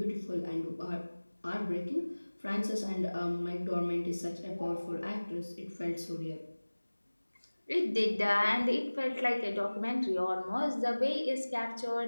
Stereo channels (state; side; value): inverted; both; correlation -1.00